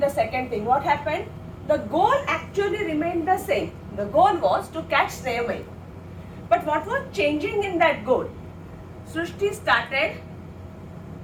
second thing, what happened? The goal actually remained the same. The goal was to catch Snehamayi. But what was changing in that goal? Srishti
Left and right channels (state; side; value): identical; both; correlation 1.00